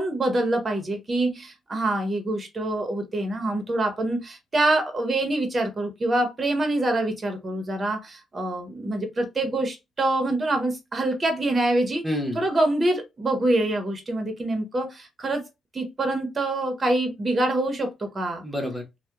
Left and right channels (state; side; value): normal; both; correlation 0.83